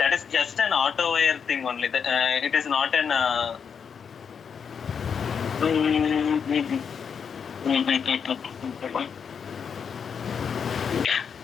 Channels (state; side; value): quieter; right; 6.8 dB